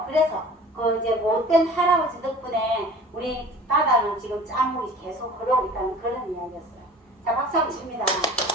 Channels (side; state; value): both; normal; correlation 0.44